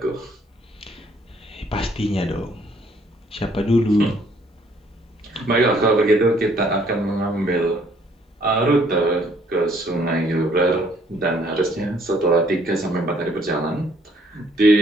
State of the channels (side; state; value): both; normal; correlation 0.64